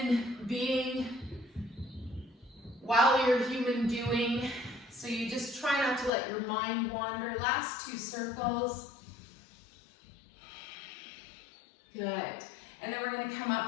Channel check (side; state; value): right; drops out; at 6.1 s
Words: being while you're human doing. So you just try not to let your mind wander. Last 2 circles. Good. And then we're going to come